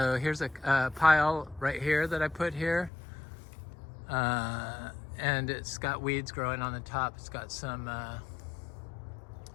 here's a pile right here that I put here. And it's got weeds growing on the top. It's got some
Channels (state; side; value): drops out; right; at 2.9 s